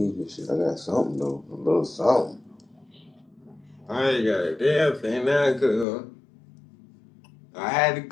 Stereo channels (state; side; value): drops out; right; at 5.9 s